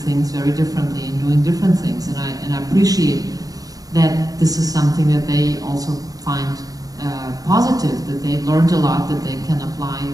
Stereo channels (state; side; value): late; left; 0.18 ms